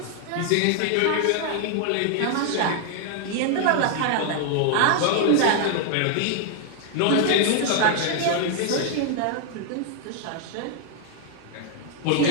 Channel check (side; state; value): both; different; correlation 0.00